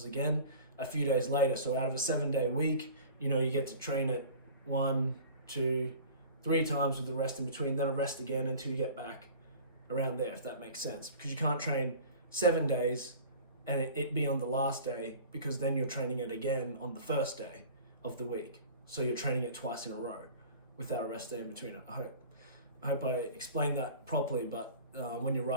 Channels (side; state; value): both; inverted; correlation -0.42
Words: again a few days later. So out of a 7-day week, you know, you get to train it 1, 2, 3 times with the rest in between, then a rest again until you get back around there, if that makes sense. Because you can't train 7 days and it be on the last day, because then you're training it again on the first day of the week. So you're training it twice in a row without a rest day in between. I hope I explained that properly, but when you're